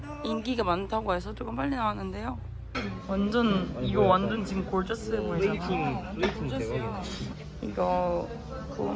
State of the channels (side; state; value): both; identical; correlation 1.00